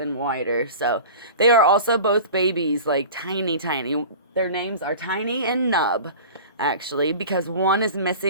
wider. So they are also both babies, like tiny. Their names are Tiny and Nub, actually, because one is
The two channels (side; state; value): both; inverted; correlation -0.37